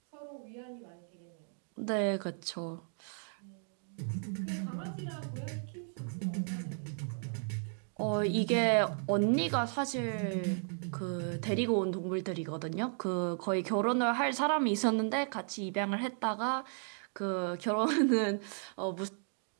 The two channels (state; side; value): silent; left; 55 dB below the other